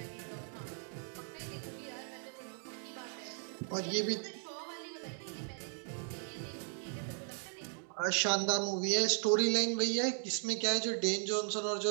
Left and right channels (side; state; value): left; silent; 53 dB below the other